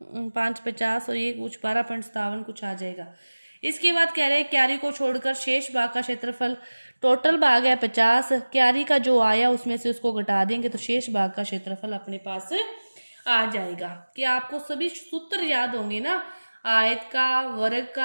5 50 और ये कुछ 12.57 कुछ आ जाएगा। इसके बाद कह रहे हैं क्यारी को छोड़कर शेष भाग का क्षेत्रफल, टोटल भाग है 50, क्यारी का जो आया उसमें से उसको घटा देंगे तो शेष भाग का क्षेत्रफल अपने पास आ जाएगा। कि आपको सभी सूत्र याद होंगे ना? आयत का, वर्ग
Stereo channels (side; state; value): both; inverted; correlation -1.00